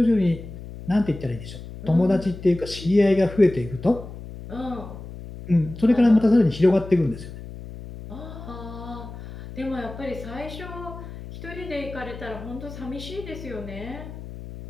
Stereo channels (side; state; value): left; noise; hum, 12 dB below the sound